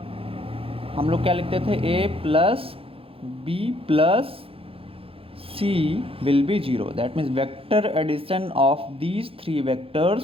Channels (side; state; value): left; late; 0.27 ms